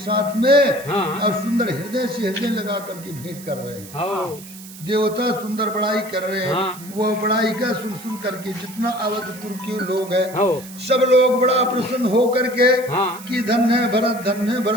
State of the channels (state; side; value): noise; right; hiss, 17 dB below the sound